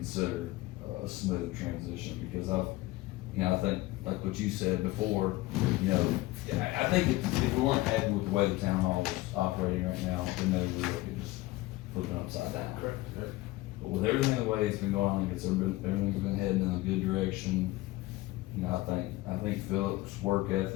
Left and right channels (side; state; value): right; quieter; 19.1 dB